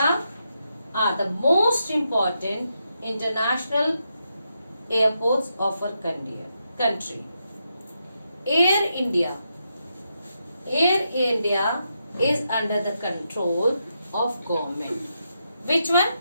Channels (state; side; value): inverted; both; correlation -0.83